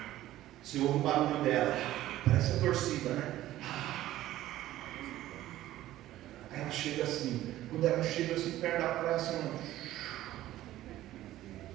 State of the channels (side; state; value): left; quieter; 14.5 dB